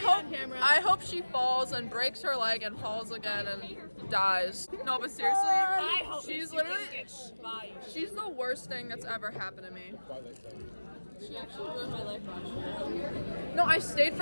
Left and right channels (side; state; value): both; inverted; correlation -1.00